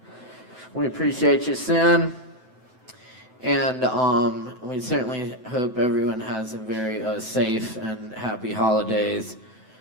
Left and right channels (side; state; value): left; late; 9.1 ms